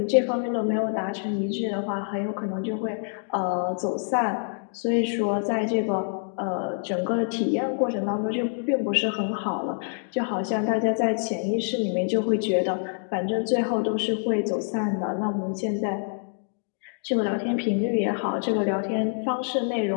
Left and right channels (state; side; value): silent; right; digital silence